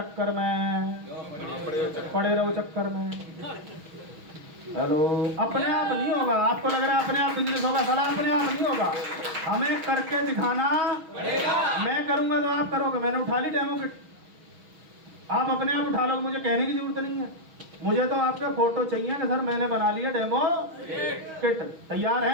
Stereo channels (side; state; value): left; late; 6.3 ms